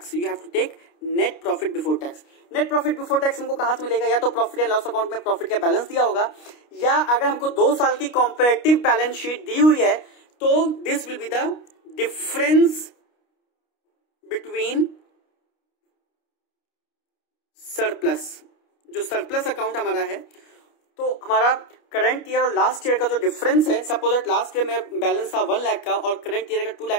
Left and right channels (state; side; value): late; right; 29 ms